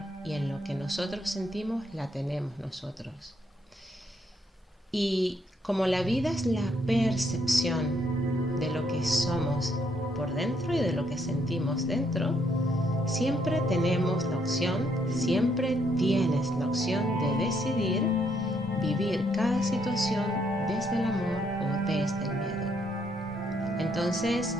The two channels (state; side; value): normal; both; correlation 0.73